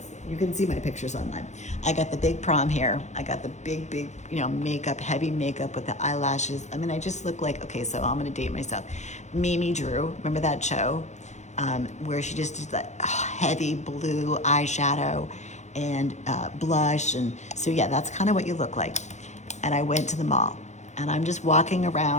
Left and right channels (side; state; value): right; late; 0.33 ms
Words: You can see my pictures online. I got the big prom hair. I got the big, you know, makeup, heavy makeup with the eyelashes. I mean, I just look like, okay, so I'm gonna date myself. Mimi Drew, remember that show? Where she just did that heavy blue eyeshadow and blush. And so yeah, that's kind of what you look like. And I went to the mall, and I'm just walking